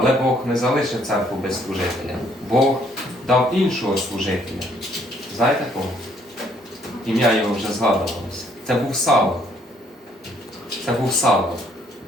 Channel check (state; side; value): normal; both; correlation 0.66